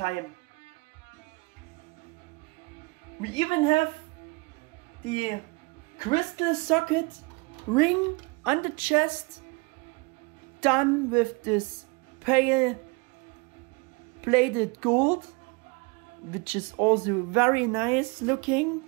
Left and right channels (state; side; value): quieter; left; 28.2 dB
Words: We even have the crystal socket ring on the chest, done with this pale bladed gold, which is also very nice looking.